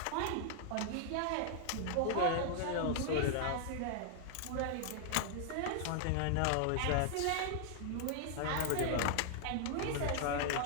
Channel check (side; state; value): both; different; correlation -0.01